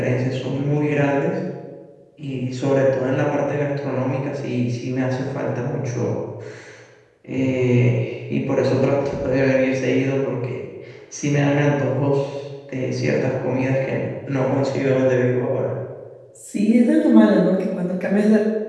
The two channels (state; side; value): identical; both; correlation 1.00